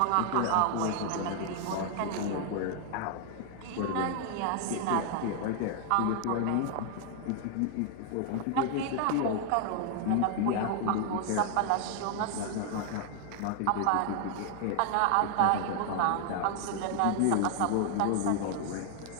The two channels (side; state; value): both; different; correlation 0.00